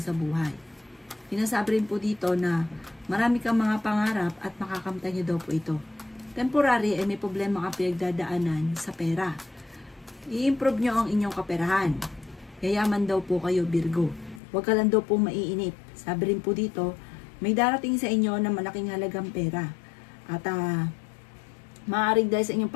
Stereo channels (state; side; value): drops out; right; at 14.4 s